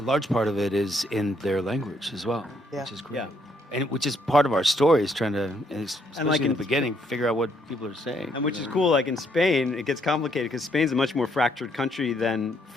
part of it is in their language as well, which is great. Yeah. And which is part of our story, is trying to, especially like in the beginning, figure out what people are saying. And which is cool, like in Spain, it gets complicated because Spain's a much more fractured country than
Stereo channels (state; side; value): normal; both; correlation 0.71